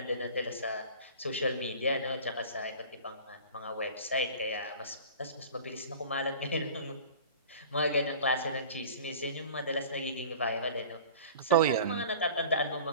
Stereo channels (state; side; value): inverted; both; correlation -0.41